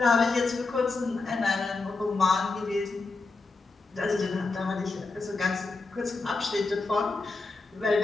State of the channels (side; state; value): right; quieter; 3.7 dB